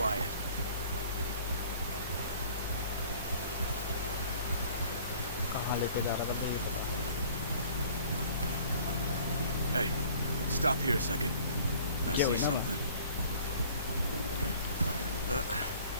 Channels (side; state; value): both; inverted; correlation -0.51